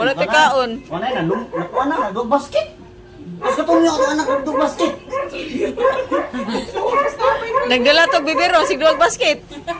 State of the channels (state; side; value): identical; both; correlation 1.00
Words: ka kaon. Wala na dog basket. Kasi kung yung anak ng dog basket. Nagdala to bibiro, sigduwag basket.